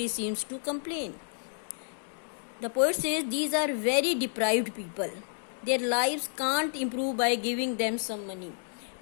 seems to complain. The poet says these are very deprived people, their lives can't improve by giving them some money.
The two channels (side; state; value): right; silent; digital silence